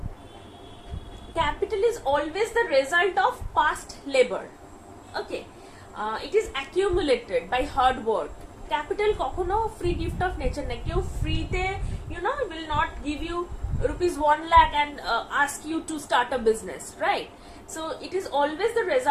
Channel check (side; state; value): both; identical; correlation 1.00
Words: capital is always the result of past labor. Okay, it is accumulated by hard work. Capital কখনো free gift of nature না। কেউ ফ্রিতে will not give you rupees 1 lakh and ask you to start a business, right? So it is always the